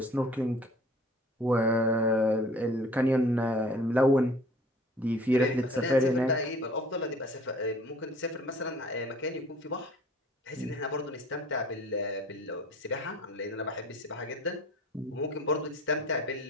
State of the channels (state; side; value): normal; both; correlation 0.49